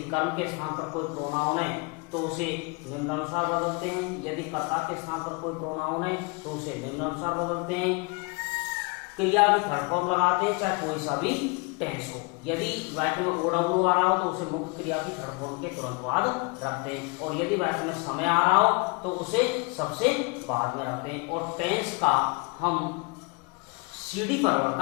कर्म के स्थान पर कोई प्रोनाउन है तो उसे निम्नानुसार बदलते हैं। यदि कर्ता के स्थान पर कोई प्रोनाउन है तो उसे निम्नानुसार बदलते हैं। क्रिया की थर्ड फॉर्म लगाते हैं, चाहे कोई सा भी टेंस हो। यदि वाक्य में ओडब्ल्यू आ रहा हो तो उसे मुख्य क्रिया की थर्ड फॉर्म के तुरंत बाद रखते हैं। और यदि वाक्य में समय आ रहा हो तो उसे सबसे बाद में रखते हैं। और टेंस का हम सीढ़ी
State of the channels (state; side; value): quieter; right; 30.6 dB